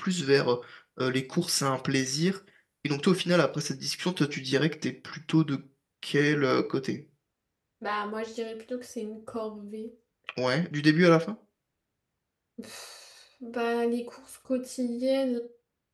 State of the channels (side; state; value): both; identical; correlation 1.00